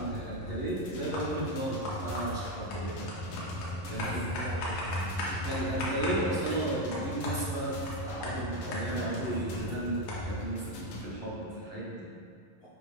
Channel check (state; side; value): late; right; 11 ms